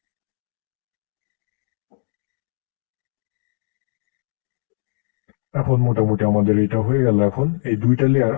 এখন মোটামুটি আমাদের এটা হয়ে গেল। এখন এই দুইটা লেয়ার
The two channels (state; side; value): silent; right; digital silence